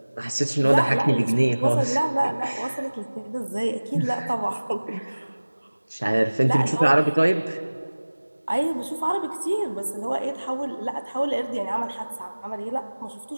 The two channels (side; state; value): both; inverted; correlation -1.00